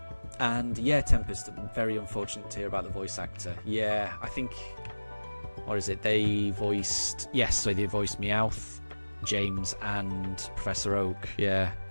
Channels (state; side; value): inverted; both; correlation -1.00